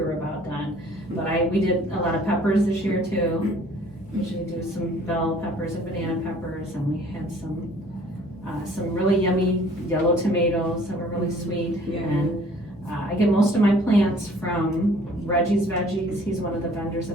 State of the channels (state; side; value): noise; left; hum, 21 dB below the sound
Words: about done. But we did a lot of peppers this year too. Usually do some bell peppers and banana peppers, and we had some really yummy yellow tomatoes that were really sweet. Yeah. And I get most of my plants from Reggie's Veggies. He's one of the vendors